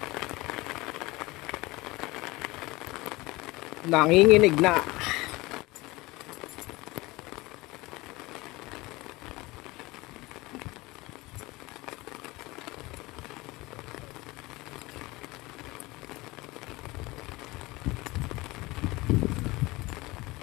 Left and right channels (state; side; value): quieter; right; 21.5 dB